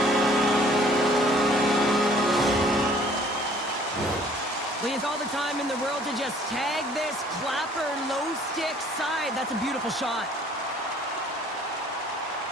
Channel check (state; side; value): normal; both; correlation 0.56